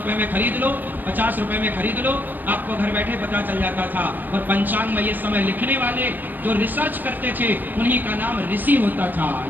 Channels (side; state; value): left; late; 0.090 ms